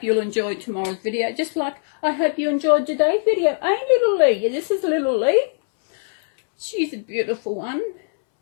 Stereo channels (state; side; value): silent; right; 65 dB below the other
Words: you'll enjoy tomorrow's video. Just like I hope you enjoyed today's video. Ain't little Lee? Yeah, this is little Lee. She's a beautiful one.